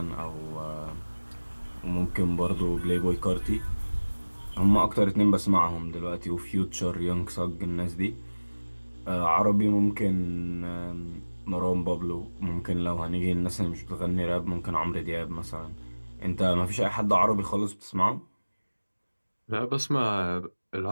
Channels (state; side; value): inverted; both; correlation -1.00